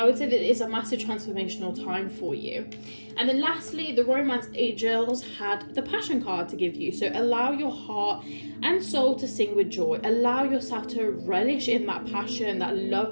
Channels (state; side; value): inverted; both; correlation -1.00